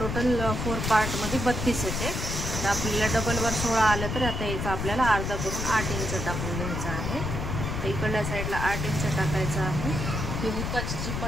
4 पार्टमध्ये 32 येते। तर आपल्याला डबलवर 16 आलं तर आता याचं आपल्याला अर्धा करून 8 इंच टाकून घ्यायचं आहे। तर इकडल्या साईडला 8 इंच टाकायचं आहे। ही हुकाची जी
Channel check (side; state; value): left; noise; rumble, 3 dB below the sound